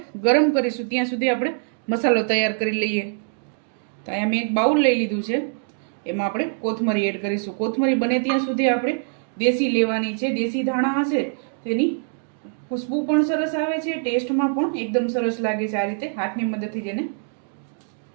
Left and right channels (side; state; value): left; silent; digital silence